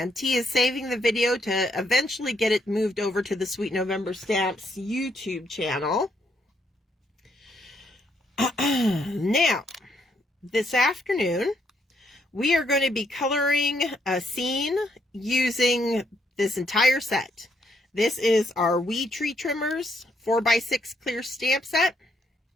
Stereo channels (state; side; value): normal; both; correlation 0.74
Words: T is saving the video to eventually get it moved over to the Sweet November Stamps YouTube channel. Now, this afternoon, we are going to be coloring a scene using this entire set. This is our Wee Tree Trimmers 4x6 clear stamp set.